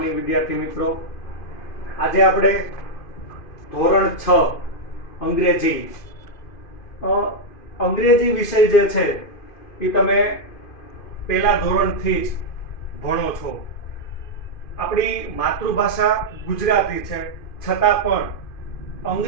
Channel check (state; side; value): late; right; 2.5 ms